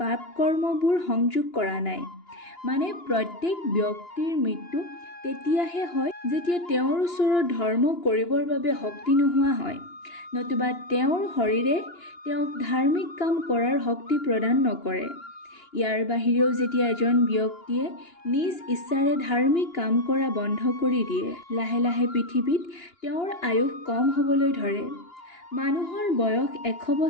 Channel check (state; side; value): late; right; 2.9 ms